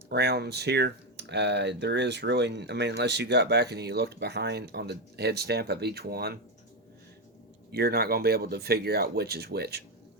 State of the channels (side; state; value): both; normal; correlation 0.09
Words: rounds here, there is really, unless you got back and you looked behind on the head stamp of each one, you're not going to be able to figure out which is which.